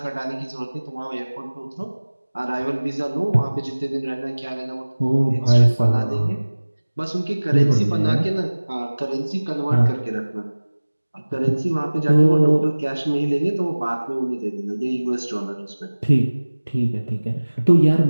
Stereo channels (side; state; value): both; inverted; correlation -1.00